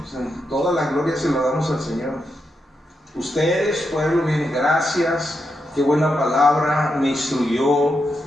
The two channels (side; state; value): both; normal; correlation 0.84